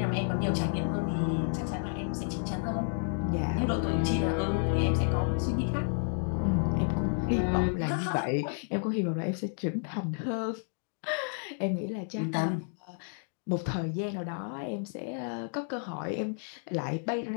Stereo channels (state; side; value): silent; right; 57 dB below the other